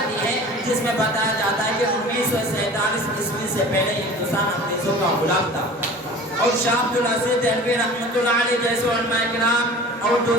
ہے، جس میں بتایا جاتا ہے کہ 1947 عیسوی سے پہلے ہندوستان انگریزوں کا غلام تھا، اور شاہ عبد العزیز دہلوی رحمۃ اللہ علیہ جیسے علماء کرام اور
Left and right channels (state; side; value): normal; both; correlation 0.41